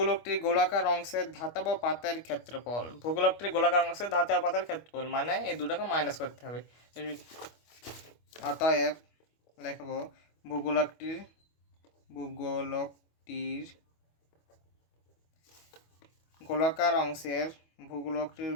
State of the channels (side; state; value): right; late; 25 ms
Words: গোলাকার অংশের ধাতব পাতের ক্ষেত্রফল। ভূগোলকটির গোলাকার অংশের ধাতব পাতের ক্ষেত্রফল মানে এই দুটাকে মাইনাস করতে হবে। অতএব লিখব ভূগোলকটির গোলাকার অংশের